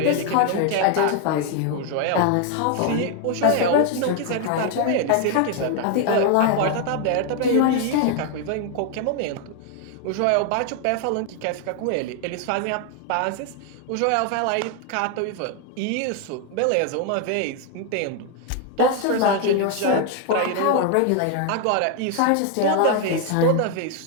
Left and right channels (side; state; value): both; different; correlation 0.01